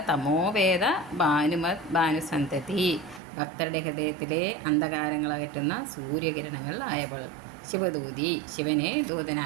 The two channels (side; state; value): left; drops out; at 3.2 s